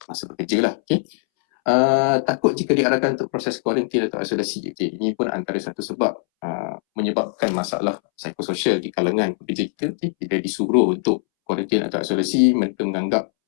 masa bekerja lah. Takut jika diarahkan untuk proses kuarantin atau isolasi. Ini pun antara satu sebab menyebabkan masalah psikososial di kalangan pekerja kita. Bila disuruh untuk kuarantin atau isolasi, mereka menganggap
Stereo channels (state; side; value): silent; right; 64 dB below the other